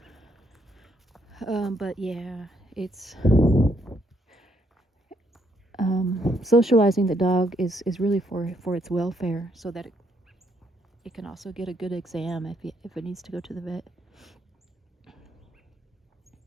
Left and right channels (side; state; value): both; normal; correlation 0.72